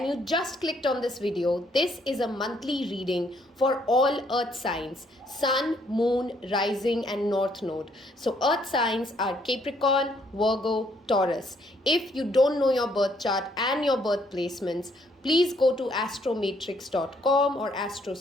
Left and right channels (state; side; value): normal; both; correlation 0.68